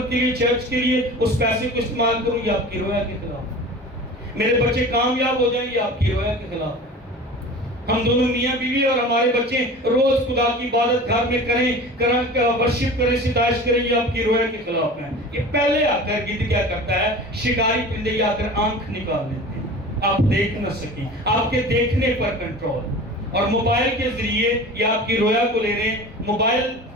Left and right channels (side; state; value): both; normal; correlation 0.37